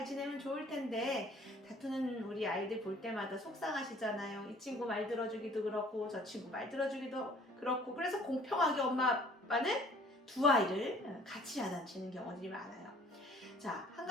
지내면 좋을 텐데 다투는 우리 아이들 볼 때마다 속상하시잖아요. 이 친구 말 들어주기도 그렇고 저 친구 말 들어주기도 그렇고, 그래서 공평하게 엄마 아빠는 두 아이를 같이 야단치는 경우들이 많아요. 자, 한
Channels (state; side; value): normal; both; correlation 0.54